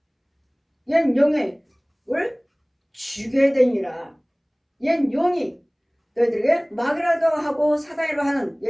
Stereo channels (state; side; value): identical; both; correlation 1.00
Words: 옛 용을 죽여야 되니라. 옛 용이 너희들에게 마귀라도 하고 사단이라고 하는